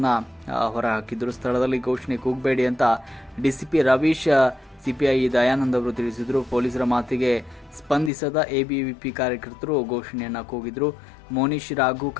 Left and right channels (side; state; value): right; drops out; at 8.1 s